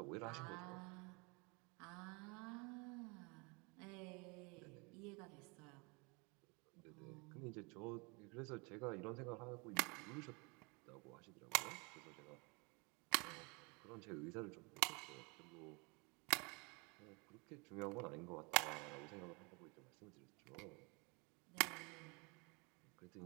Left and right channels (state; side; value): quieter; left; 30.2 dB